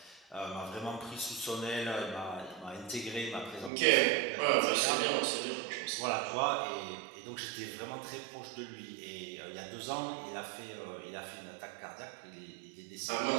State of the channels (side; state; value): left; drops out; at 3.7 s